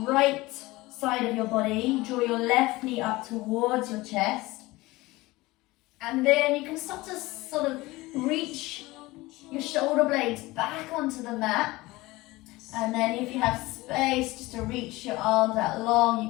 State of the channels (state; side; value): quieter; right; 20.3 dB